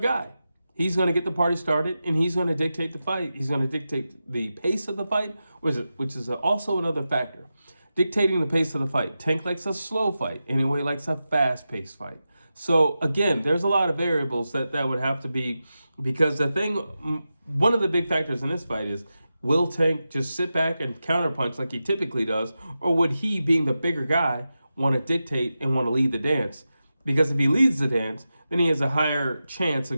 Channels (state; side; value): inverted; both; correlation -0.91